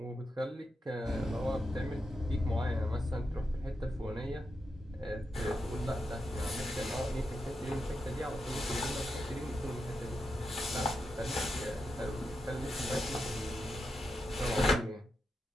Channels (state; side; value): normal; both; correlation 0.86